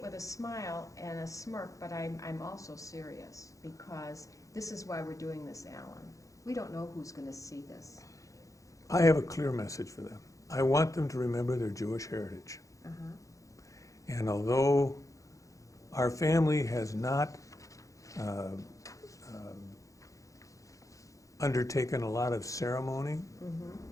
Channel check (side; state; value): right; late; 0.16 ms